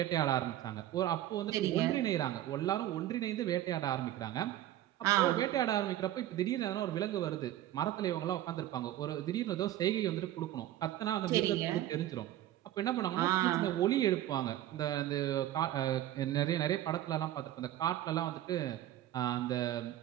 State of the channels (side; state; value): left; quieter; 13.2 dB